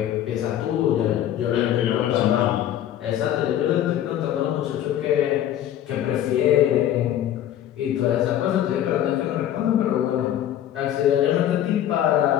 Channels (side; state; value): right; quieter; 11.4 dB